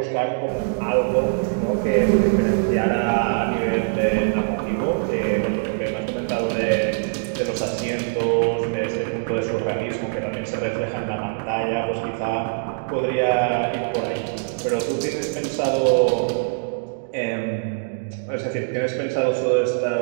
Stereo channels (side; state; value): left; silent; digital silence